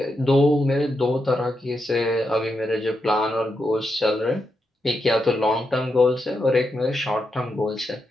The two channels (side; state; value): both; normal; correlation 0.85